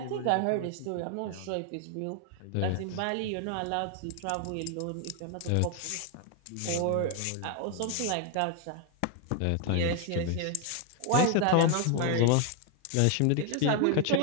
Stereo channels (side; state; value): both; different; correlation 0.00